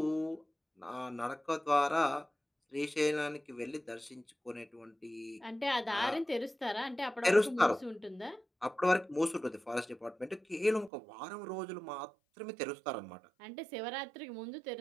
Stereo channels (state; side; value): drops out; left; at 10.9 s